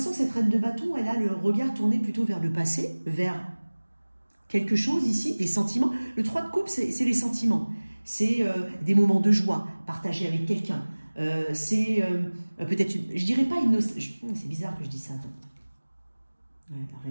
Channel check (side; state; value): both; inverted; correlation -1.00